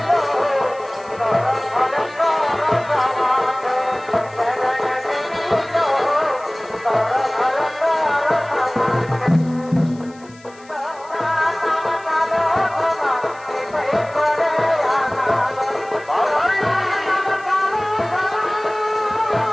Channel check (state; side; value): noise; left; hiss, 26 dB below the sound